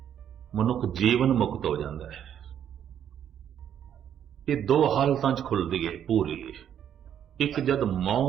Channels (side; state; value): left; quieter; 9.5 dB